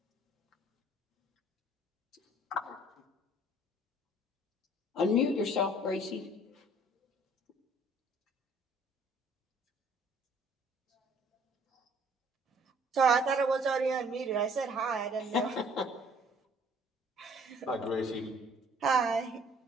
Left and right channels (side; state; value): both; normal; correlation 0.57